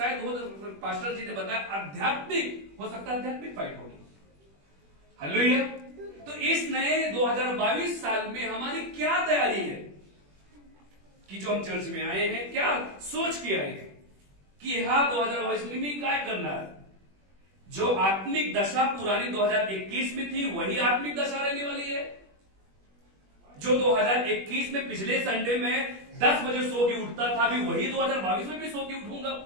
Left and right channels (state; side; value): late; left; 21 ms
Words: हो पास्टर जी ने बताया आध्यात्मिक हो सकता है आध्यात्मिक फाइट होगी. हालेलुया. तो इस नए 2022 साल में हमारी क्या तैयारी है कि जो हम चर्च में आए हैं क्या सोच के आए हैं कि हाँ 2022 में क्या करना है. जो आत्मिक दशा पुरानी 2021 में थी वही आत्मिक दशा रहने वाली है. जो 2021 में पिछले संडे में 10 बजे सो के उठता था अभी वही 2022 में भी सो के उठूंगा